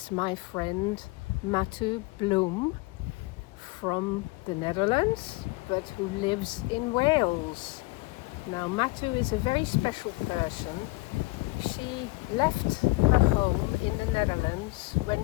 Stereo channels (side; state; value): right; quieter; 22.8 dB